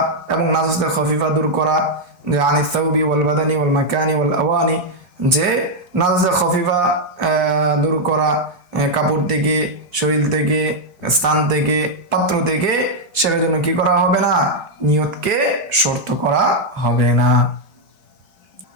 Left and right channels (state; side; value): late; left; 1.3 ms